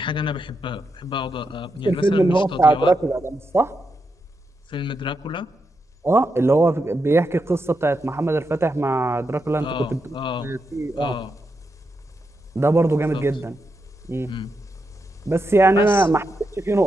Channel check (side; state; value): both; normal; correlation 0.85